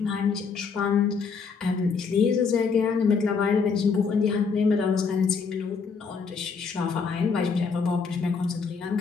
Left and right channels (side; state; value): right; quieter; 5.4 dB